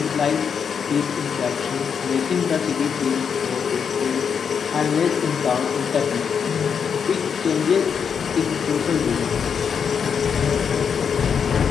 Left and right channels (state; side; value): quieter; right; 6.8 dB